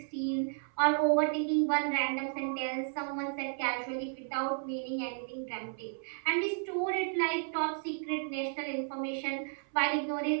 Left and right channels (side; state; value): left; silent; 56 dB below the other